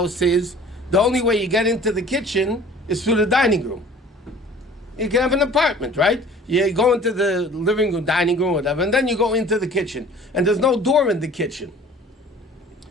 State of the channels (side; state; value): both; normal; correlation 0.48